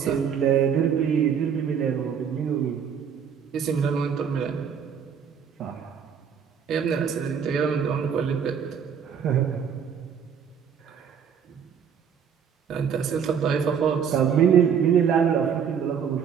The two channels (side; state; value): left; quieter; 7.5 dB